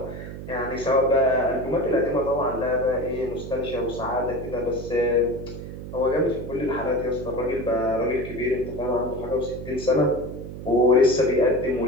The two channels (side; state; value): right; noise; hum, 10 dB below the sound